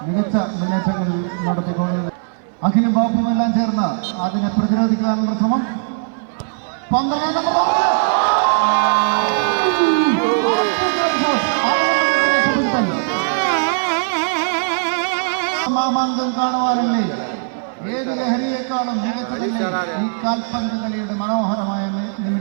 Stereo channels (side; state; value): left; silent; 67 dB below the other